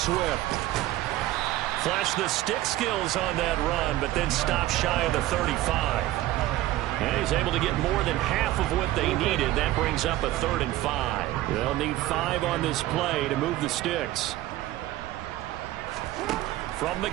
Flashed the stick skills on that run, but then stopped shy of the 35. And he's able to get more than half of what they needed. That brings up a 3rd and 5. They'll need 5 on this play to move the sticks. From the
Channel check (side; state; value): left; quieter; 15.7 dB